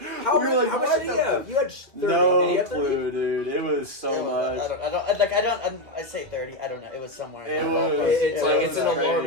How we were much, like, how much "What did you the have? You had 30. Did you No have 30? clue, dude. It was so much. I say 30. I don't know. It was somewhere. It in was. there. It's like was it's an crazy.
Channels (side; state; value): left; late; 2.5 ms